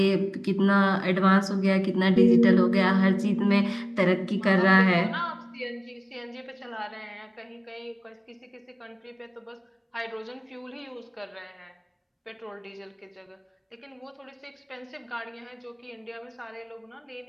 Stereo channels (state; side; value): identical; both; correlation 1.00